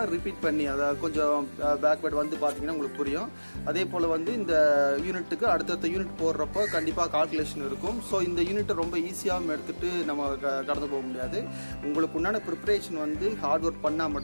ரிப்பீட் பண்ணி அதை கொஞ்சம் பேக்வேர்ட் வந்து பார்த்தீங்கன்னா உங்களுக்கு புரியும். அதே போல் வந்து இந்த யூனிட்டுக்கு அடுத்தடுத்த யூனிட் போடுறப்போ கண்டிப்பாக கால்குலேஷன் இருக்கும். ஸோ இந்த யூனிட்டை ரொம்ப ஈஸியாகவும் எடுத்துகிட்டு நம்ம கடந்து போக முடியாது. உங்களுக்கு உண்டான ப்ரிப்பரேஷன் வந்து ஹார்ட் ஒர்க்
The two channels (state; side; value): inverted; both; correlation -1.00